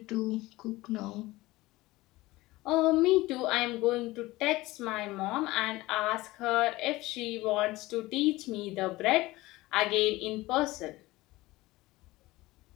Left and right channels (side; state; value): right; quieter; 19.3 dB